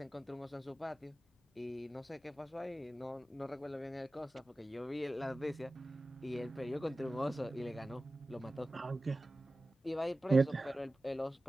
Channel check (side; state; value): both; normal; correlation 0.96